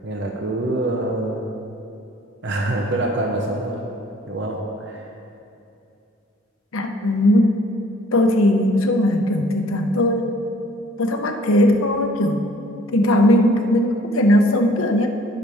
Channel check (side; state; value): both; normal; correlation 0.57